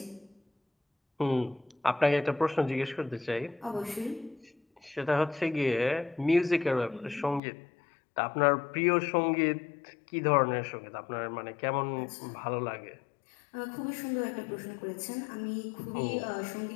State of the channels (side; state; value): right; drops out; at 7.4 s